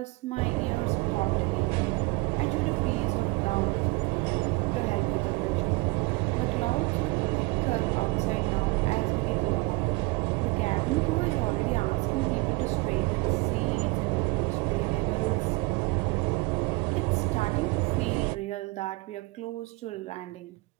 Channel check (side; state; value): left; quieter; 24.8 dB